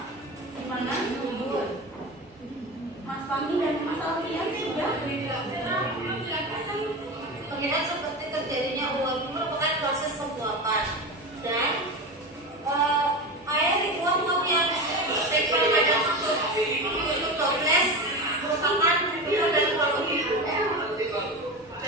Gimana? Jujur. Mas Fahmi dan Mas Alfian sudah. Pengingat seperti terjadinya uap merupakan proses penguapan dan air diuap-uap yang tempel pada tutup toples merupakan video dan volume.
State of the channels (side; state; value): both; normal; correlation 0.24